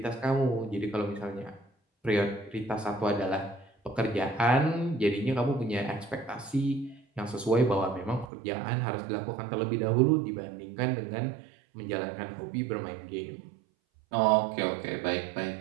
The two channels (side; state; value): left; drops out; at 8.3 s